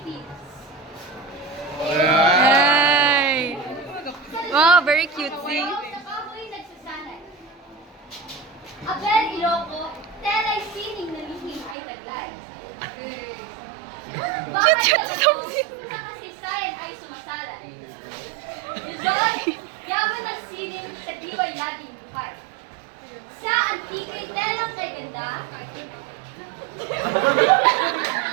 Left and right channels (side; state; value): left; drops out; at 11.8 s